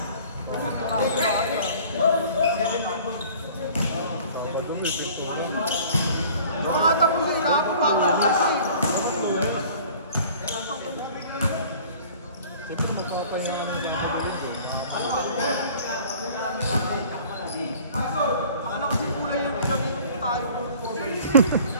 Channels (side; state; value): both; inverted; correlation -0.49